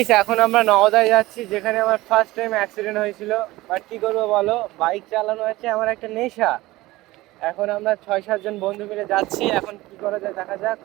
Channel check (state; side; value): quieter; left; 18.8 dB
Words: এখন আমরা নওদায় যাচ্ছি, যেখানে আমার ফার্স্ট টাইম অ্যাক্সিডেন্ট হয়েছিল। বাট কি করবো বলো, বাইক চালানো হচ্ছে আমার একটা নেশা। এখন আমরা 6-7 জন বন্ধু মিলে যাচ্ছি, এখন কি করা যায় দেখা যাক।